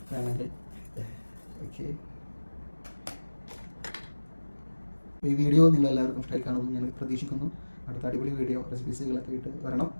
വേണമെങ്കിൽ. ഓക്കെ, ഈ വീഡിയോ നിങ്ങളെല്ലാവർക്കും ഇഷ്ടമായി കാണുമെന്ന് ഞാൻ പ്രതീക്ഷിക്കുന്നു. അടുത്ത അടിപൊളി വീഡിയോ റെസിപ്പീസുകളൊക്കെ ആയിട്ട് വരണം.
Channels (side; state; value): both; inverted; correlation -1.00